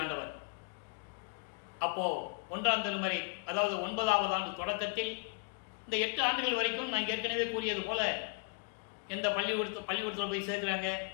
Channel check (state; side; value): quieter; right; 36.3 dB